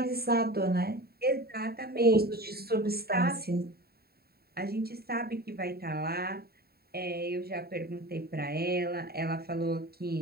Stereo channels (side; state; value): left; late; 0.45 ms